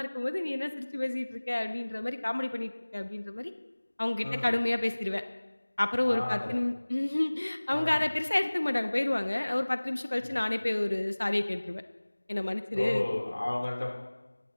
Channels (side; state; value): both; inverted; correlation -1.00